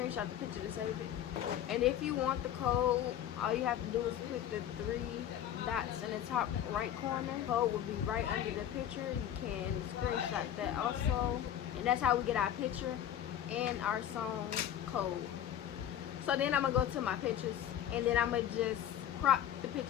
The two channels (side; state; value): right; quieter; 10.7 dB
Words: the picture to save it. And if you want the code, all you have to do is click the 3 dots in the top right corner. The code will be right under the picture. You can screenshot that also, and that's how we get our picture and our song code. So then I'm gonna go to my pictures, and then I'm gonna just crop the